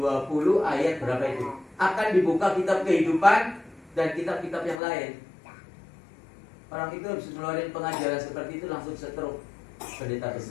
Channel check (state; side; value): drops out; right; at 4.8 s